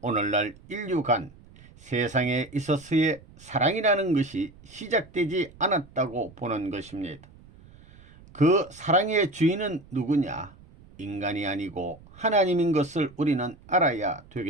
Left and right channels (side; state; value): right; noise; rumble, 23 dB below the sound